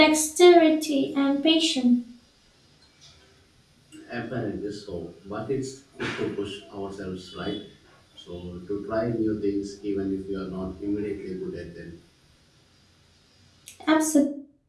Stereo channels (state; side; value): identical; both; correlation 1.00